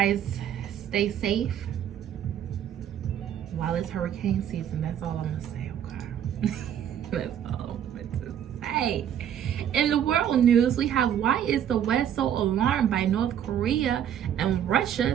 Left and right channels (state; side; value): quieter; left; 9.8 dB